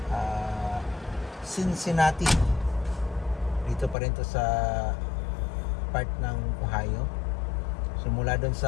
Cincinnati. Dito pa rin to sa part ng Ohio. So mula doon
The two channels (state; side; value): drops out; right; at 4.0 s